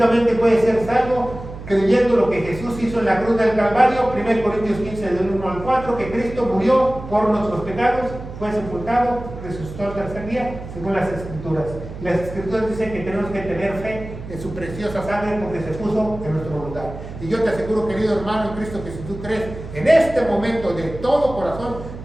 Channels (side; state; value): right; noise; hum, 11 dB below the sound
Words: puedes ser salvo creyendo lo que Jesús hizo en la cruz del Calvario, 1 Corintios 15, del 1 al 4, que Cristo murió por nuestros pecados, fue sepultado, resucitó al tercer día, según las Escrituras. Las Escrituras dicen que tenemos que tener fe en su preciosa sangre porque se puso en nuestro lugar. Y yo te aseguro, querido hermano en Cristo, que si tú crees en este momento de todo corazón,